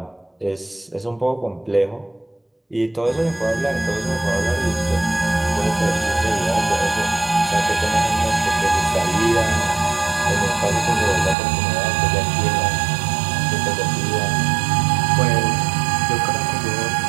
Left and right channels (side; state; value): left; drops out; at 11.4 s